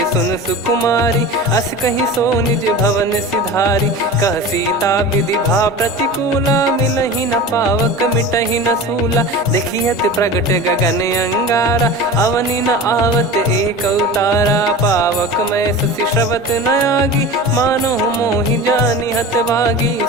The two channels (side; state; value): both; normal; correlation 0.33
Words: सुन सुकुमारी, अस कहीं सो निज भवन सिधारी। कह सीता विधि भा प्रतिकूला, मिलहि न पावक मिटहि न सूला। देखियत प्रगट गगन अंगारा, अवनि न आवत एक अवतारा। पावक मैं शशि श्रवत न आगी, मानो मोहि जानि हत भागी।